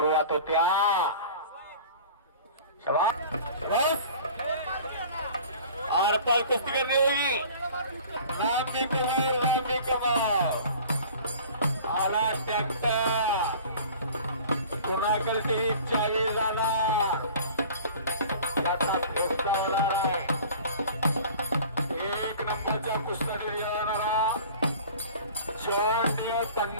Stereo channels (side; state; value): both; inverted; correlation -0.44